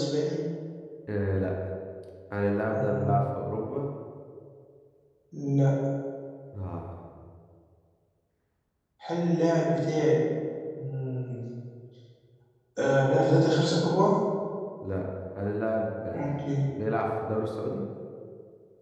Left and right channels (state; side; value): identical; both; correlation 1.00